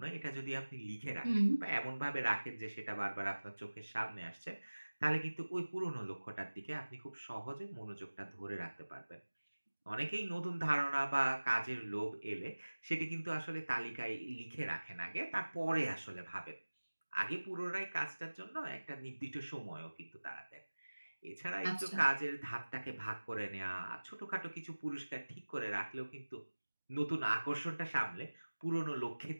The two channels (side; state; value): both; inverted; correlation -1.00